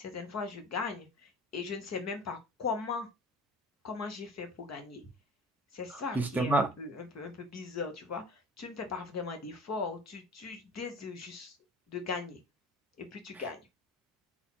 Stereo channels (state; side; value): normal; both; correlation 0.41